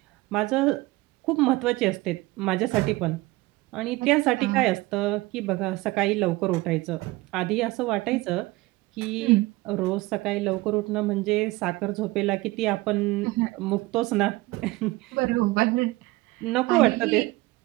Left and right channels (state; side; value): quieter; left; 20.5 dB